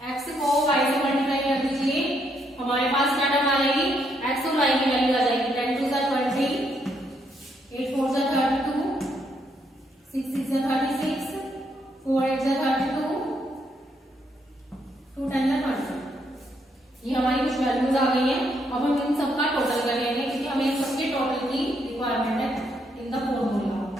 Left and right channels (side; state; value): both; normal; correlation 0.75